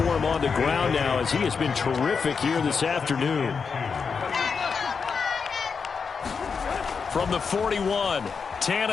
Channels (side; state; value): right; quieter; 5.6 dB